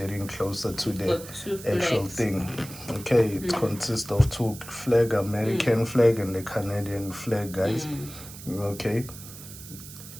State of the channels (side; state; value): right; noise; hiss, 15 dB below the sound